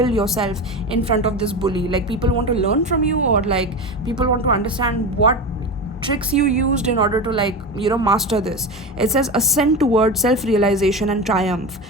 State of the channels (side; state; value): both; normal; correlation 0.23